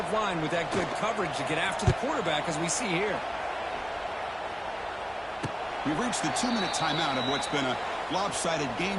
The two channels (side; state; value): both; identical; correlation 1.00